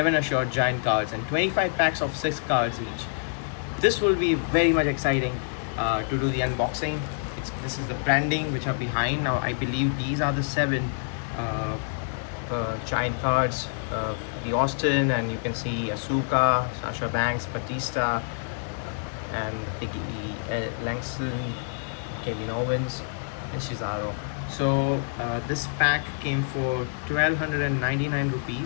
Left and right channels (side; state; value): right; silent; digital silence